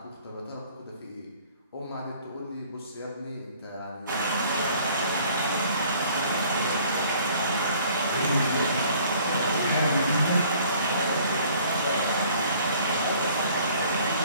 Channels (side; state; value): both; inverted; correlation -0.55